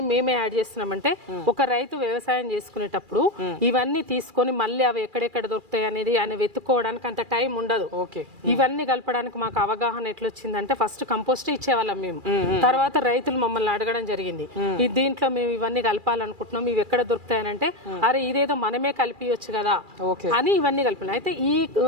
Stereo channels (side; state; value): left; late; 2.4 ms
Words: మేమే యాడ్ చేస్తున్నామంటే ఒక రైతు వ్యవసాయం చేసుకునేటప్పుడు ఇవన్నీ తీసుకొని మళ్ళీ అవి ఎక్కడెక్కడ దొరుకుతాయి అనేది ఆయన వెతుక్కోవడానికి అంత టైం ఉండదు. ఇవన్నీ కలపడానికి మాకు అవగాహన ఎట్లొచ్చిందంటే ఫస్ట్ కంపోస్ట్ ఇచ్చేవాళ్ళం మేము, తర్వాత రైతులు మమ్మల్ని అడగడం జరిగింది, దీంట్లో మేము ఇవన్నీ కలపాలనుకుంటున్నాం, ఇవి ఎక్కడ దొరుకుతాయనంటే అరే ఇదేదో మనమే కలిపియొచ్చు కదా అని ఇవన్నీ కలిపిన. అయితే ఈ